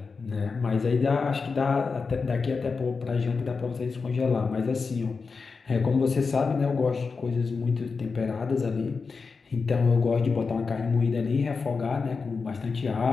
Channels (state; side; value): quieter; right; 4.8 dB